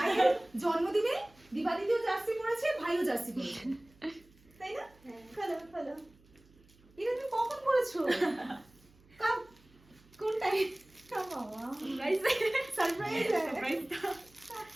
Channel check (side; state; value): right; noise; hum, 28 dB below the sound